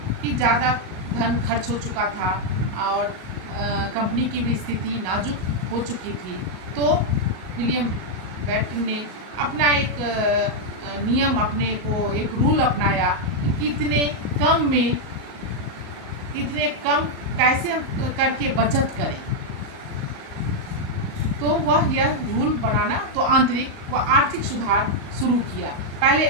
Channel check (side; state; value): left; late; 38 ms